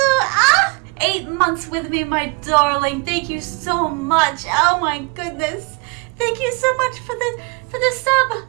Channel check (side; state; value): left; quieter; 31.7 dB